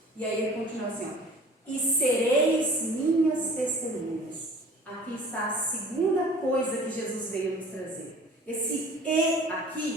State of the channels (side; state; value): both; normal; correlation 0.47